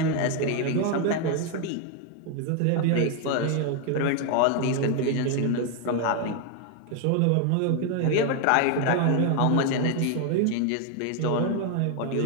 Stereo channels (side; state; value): both; different; correlation 0.01